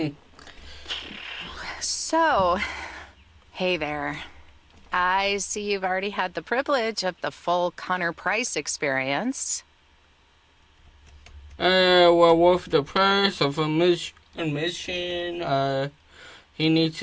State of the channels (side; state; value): both; identical; correlation 1.00